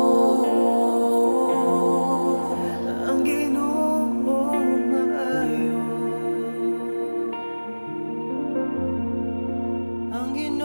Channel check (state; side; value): inverted; both; correlation -1.00